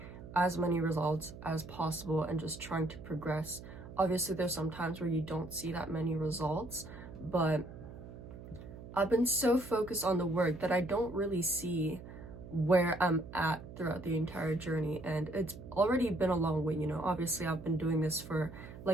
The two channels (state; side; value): noise; right; hum, 14 dB below the sound